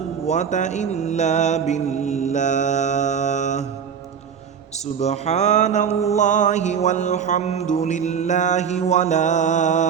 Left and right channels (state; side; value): quieter; left; 7.3 dB